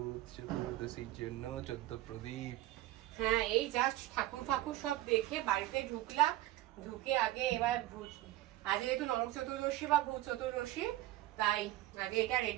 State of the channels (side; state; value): left; quieter; 16.2 dB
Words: চতুর্দশীর জন্য 14 প্রদীপ। হ্যাঁ, এই জাস্ট ঠাকুর ফাকুর সব দেখে বাড়িতে ঢুকলাম। ঢুকে আগে এবার আজ যেহেতু নরক চতুর্দশী বা ভূত চতুর্দশী, তাই আগে এটা